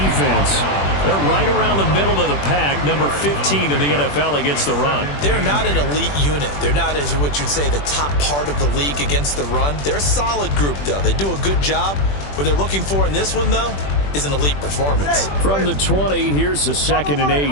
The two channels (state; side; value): late; right; 21 ms